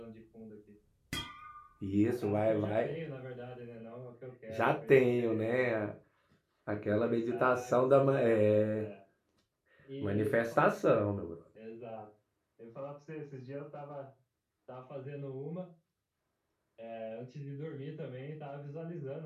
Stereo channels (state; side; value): identical; both; correlation 1.00